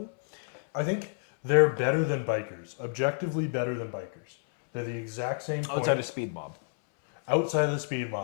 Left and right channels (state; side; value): silent; right; 58 dB below the other